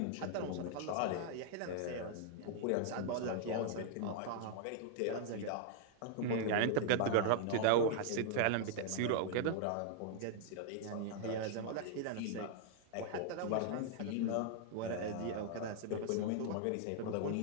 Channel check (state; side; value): different; both; correlation -0.01